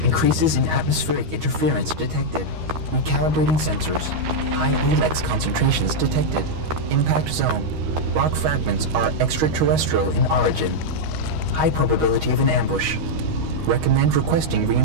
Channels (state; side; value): late; left; 13 ms